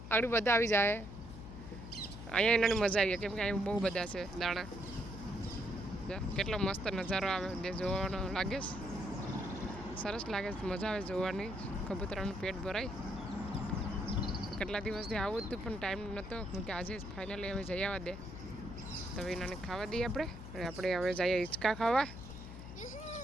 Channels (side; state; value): left; noise; hum, 11 dB below the sound